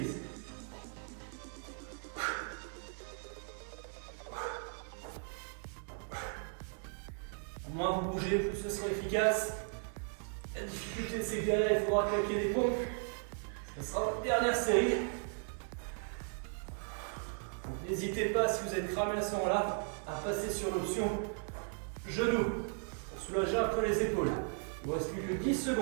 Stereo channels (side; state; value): left; silent; 53 dB below the other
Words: Moins vous bougez, plus ce sera efficace. La difficulté, c'est que derrière, il faudra claquer des pompes. Ce sera votre dernière série. N'hésitez pas, si vous êtes cramé à ce moment-là, à passer sur l'option genou pour soulager un peu les épaules. Il ne vous reste plus que 10